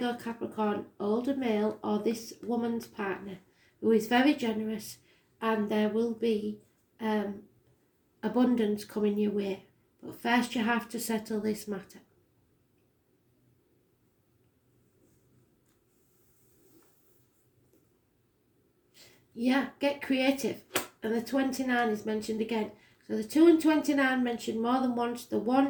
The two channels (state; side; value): identical; both; correlation 1.00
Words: Capricorn, older male, or this woman's partner, who is very generous, and there will be abundance coming your way. But first you have to settle this matter. Yeah, get creative. And the 29 is mentioned again. So the 2 and 29 mentioned more than once. The